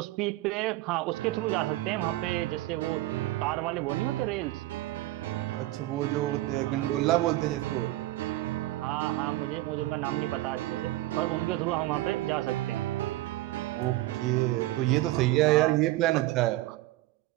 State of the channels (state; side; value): quieter; left; 17.0 dB